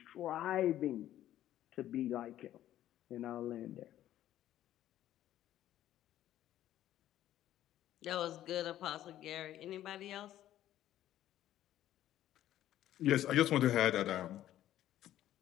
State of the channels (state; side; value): quieter; right; 12.7 dB